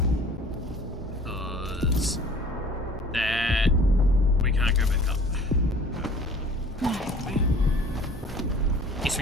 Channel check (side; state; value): both; normal; correlation 0.49